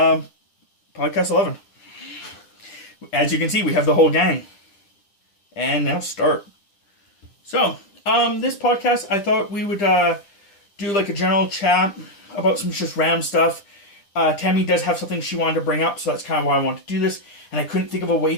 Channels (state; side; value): late; right; 10 ms